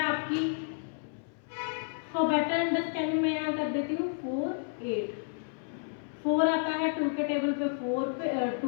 आपकी फॉर बेटर अंडरस्टैंडिंग में यहाँ कर देती हूँ 4 8। 4 आता है 2 के टेबल पे 4 पे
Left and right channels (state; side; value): silent; right; 57 dB below the other